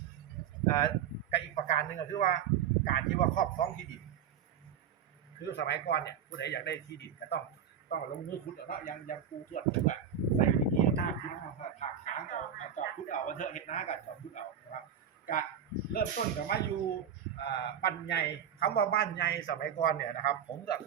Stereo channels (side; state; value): left; quieter; 8.5 dB